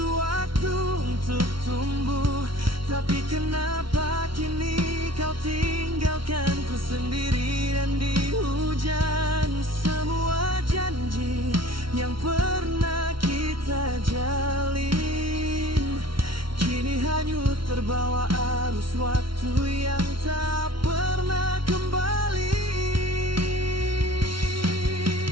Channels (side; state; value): left; late; 0.74 ms